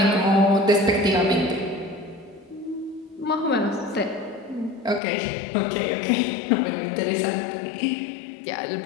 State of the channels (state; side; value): drops out; right; at 5.0 s